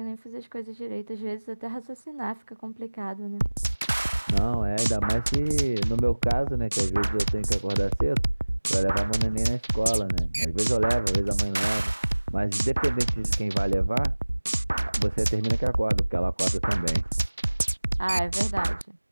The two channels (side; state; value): both; inverted; correlation -1.00